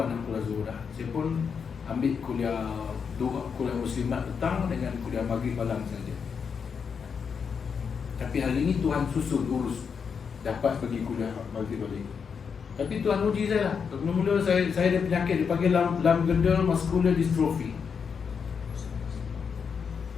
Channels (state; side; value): quieter; right; 6.3 dB